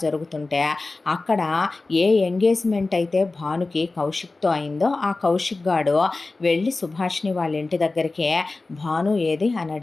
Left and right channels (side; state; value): right; quieter; 3.4 dB